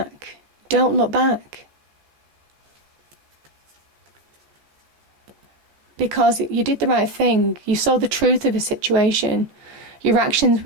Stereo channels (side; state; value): left; late; 15 ms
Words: Don't look back. Because you did the right thing. You saw the truth of a situation. Your actions